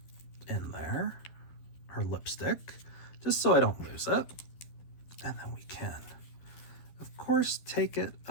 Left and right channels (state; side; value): late; right; 12 ms